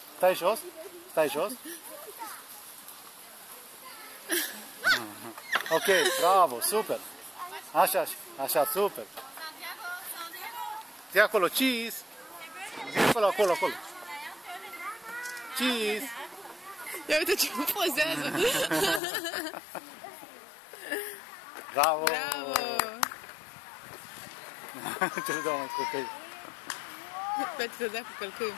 Stai jos. Stai jos. Ok, bravo, super. Așa, super. Zi acolo, cheese. Zi acolo. Cheese. Ia uite ce pozează. Bravo. Bravo. Ce se dă mai copii? Pentru că dea cu călcâiul.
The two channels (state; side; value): drops out; right; at 19.0 s